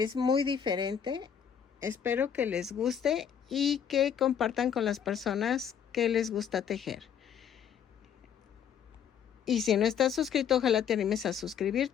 muy diferente. Espero que les guste y que compartan con las personas que les gusta tejer. Y si no estás suscrito, ojalá te animes a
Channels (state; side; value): quieter; right; 8.3 dB